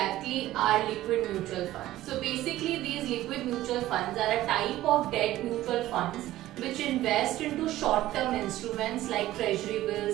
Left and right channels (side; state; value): left; quieter; 15.2 dB